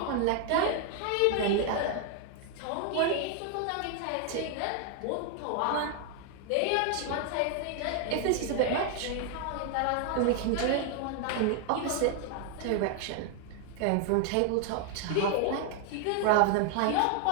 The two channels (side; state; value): both; different; correlation 0.00